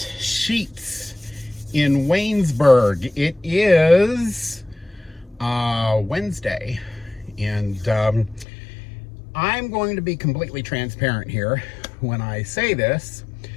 in Waynesburg. It is Wednesday, and I'm going to be completely transparent here when I say this.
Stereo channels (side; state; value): right; drops out; at 8.5 s